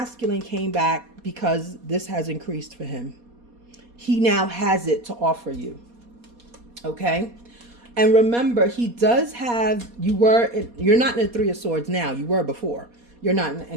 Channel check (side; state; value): left; late; 4.2 ms